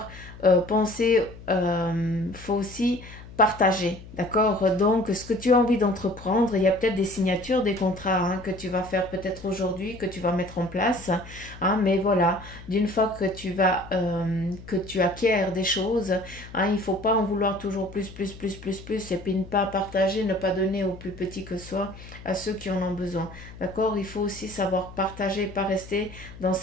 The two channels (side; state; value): left; noise; hum, 16 dB below the sound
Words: penser, faut aussi partager, d'accord? Donc, ce que tu as envie d'entreprendre, il y a peut-être des signatures, des contrats hein, que tu vas faire peut-être aujourd'hui, que tu vas mettre en place, hein, mais voilà, d'une fois que tu acquiers des choses, hein, il ne faut pas en vouloir toujours plus, et puis ne pas partager, ne pas donner aux plus petits que soi, à ceux qui en ont besoin, d'accord? Il faut aussi savoir partager, pas rester dans